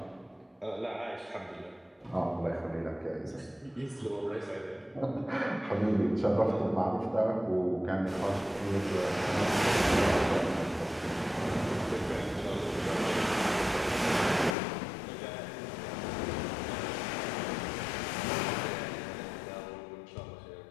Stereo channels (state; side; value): drops out; right; at 14.6 s